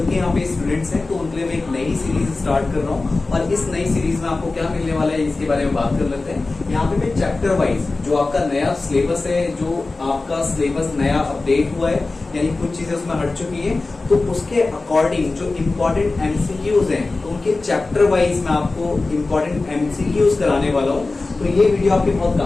के यहाँ पे स्टूडेंट्स हैं, तो उनके लिए मैं एक नई सीरीज स्टार्ट कर रहा हूँ और इस नई सीरीज में आपको क्या मिलने वाला है इसके बारे में बात कर लेते हैं। यहाँ पे मैं चैप्टर वाइज जो आपका नया सिलेबस है, जो आपका सिलेबस नया अपडेट हुआ है, यानी कुछ चीजें उसमें हट चुकी है, तो उसके अकॉर्डिंग जो इम्पोर्टेंट एमसीक्यूज हैं, तो उनके चैप्टर वाइज मैं आपको इम्पोर्टेंट एमसीक्यूज कराने वाला हूँ। तो ये वीडियो आपकी बहुत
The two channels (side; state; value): right; quieter; 3.5 dB